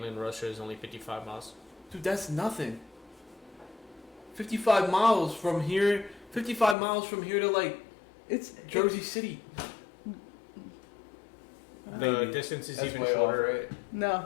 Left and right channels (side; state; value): right; drops out; at 6.8 s